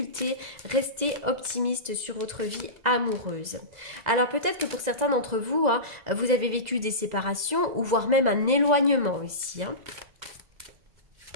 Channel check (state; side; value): late; left; 2.0 ms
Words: restez optimiste sur votre vie amoureuse. Alors peut-être que pour certains d'entre vous, hein, vous avez vécu des séparations ou voire même un éloignement ici, hein.